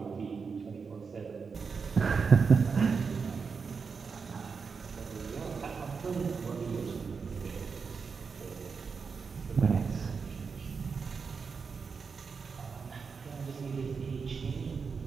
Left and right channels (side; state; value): left; quieter; 5.4 dB